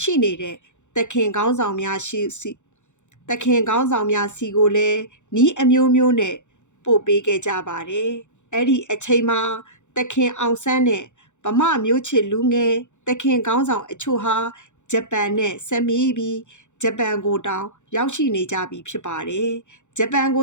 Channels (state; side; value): late; right; 0.84 ms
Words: ရှိနေတဲ့တခင်ခေါင်းဆောင်များစီကိုလည်းနီးအမျိုးမျိုးနဲ့ပို့ပေးခဲ့ကြပါတယ်အဲ့ဒီအချိန်မှာတခင်အောင်ဆန်းနဲ့ဗမာမျိုးချစ်လူငယ်တခင်ခေါင်းဆောင်အချို့ဟာဂျပန်နဲ့ဆက်မိပြီးဂျပန်ကိုတောင်ရောက်ရှိနေကြပြီဖြစ်ပါတယ်ဂျပန်ကိ